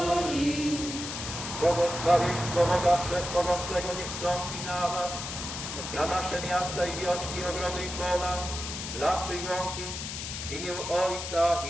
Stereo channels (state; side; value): noise; left; hiss, 6 dB below the sound